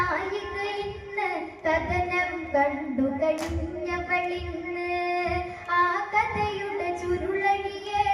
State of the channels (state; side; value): identical; both; correlation 1.00